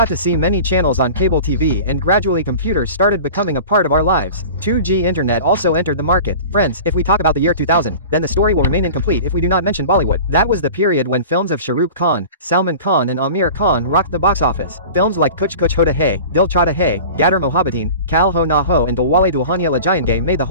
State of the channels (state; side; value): inverted; both; correlation -0.38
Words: to see many channels on cable TV and gradually computers started becoming a part of our lives. 2G internet also entered the market. Friends, if we talk about the year 2000, then the story will remain incomplete if we do not mention Bollywood. That was the period when films of Shah Rukh Khan, Salman Khan and Amir Khan rocked the box office. Films like Kuch Kuch Hota Hai, Dil Chahta Hai, Gadar Mohabbateen, Kal Ho Na Ho and Dilwale Dulhania Le Jayenge made the